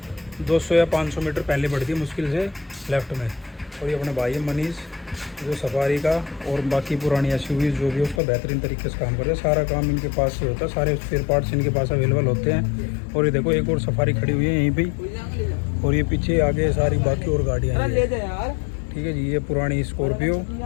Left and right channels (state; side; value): drops out; right; at 8.2 s